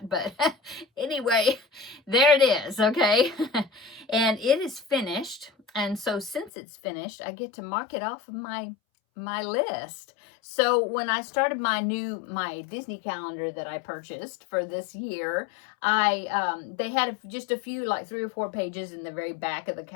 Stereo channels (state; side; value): drops out; right; at 6.5 s